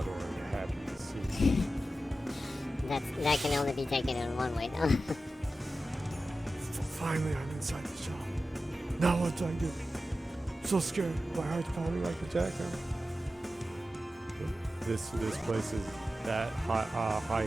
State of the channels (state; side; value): normal; both; correlation 0.93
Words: or are you happy to see? That can only be taken in one way, though. Finally, I'm inside the shop. Now what do I do? So scared. My heart's pounding like a jackhammer. This place is that